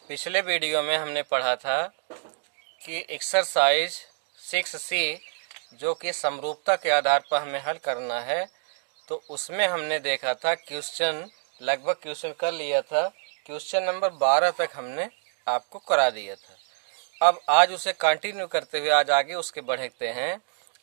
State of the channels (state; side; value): silent; left; digital silence